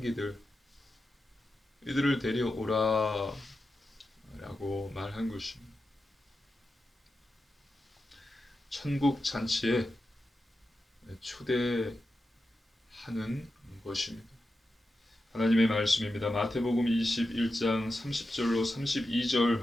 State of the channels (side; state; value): both; normal; correlation 0.90